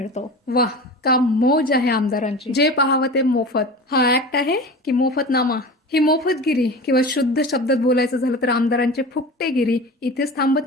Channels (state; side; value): normal; both; correlation 0.33